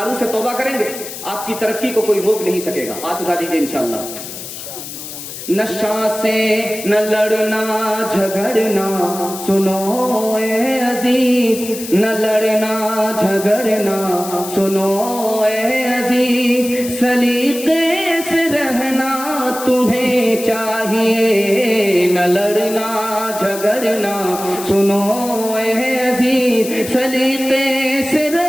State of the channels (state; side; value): noise; left; hiss, 10 dB below the sound